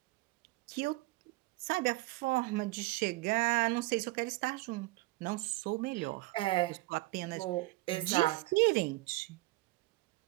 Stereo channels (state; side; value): quieter; left; 21.0 dB